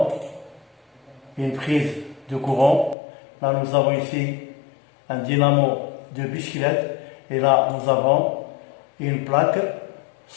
une prise de courant. Là nous avons ici un dynamo de bicyclette. Et là nous avons une plaque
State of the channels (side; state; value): right; drops out; at 3.0 s